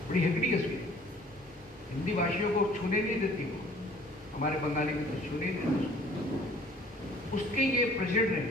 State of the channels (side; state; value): both; normal; correlation 0.53